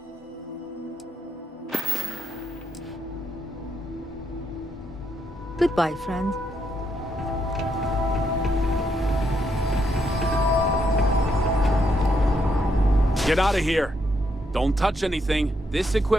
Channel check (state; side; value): normal; both; correlation 0.77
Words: Goodbye, friend. Get out of here. Don't touch anything. This